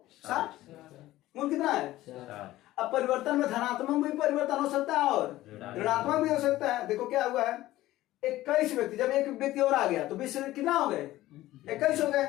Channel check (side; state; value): right; quieter; 16.0 dB